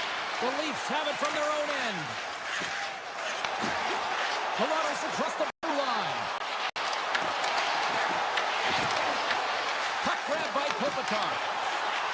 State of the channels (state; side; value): identical; both; correlation 1.00